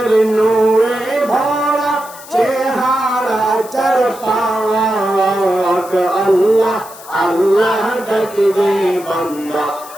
নূরে ভরা চেহারা চার পাক আল্লাহ আল্লাহ ডাকলে বান্দা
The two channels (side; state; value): left; noise; hiss, 18 dB below the sound